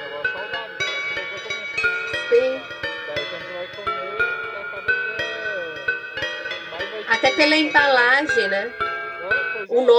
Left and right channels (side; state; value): both; identical; correlation 1.00